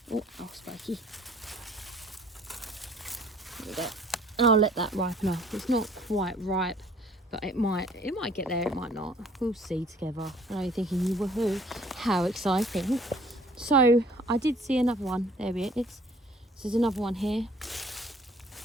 Oh, spiky. There we go. And I'll let that ripen up. It's not quite ripe, but it might get there, it might not. We'll see together. I know you're thinking, woohoo, how exciting. So I did see another one. There it is. So there's another one here.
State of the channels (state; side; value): normal; both; correlation 0.56